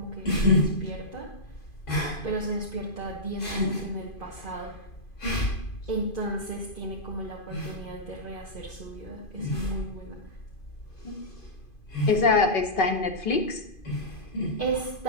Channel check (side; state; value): right; late; 2.5 ms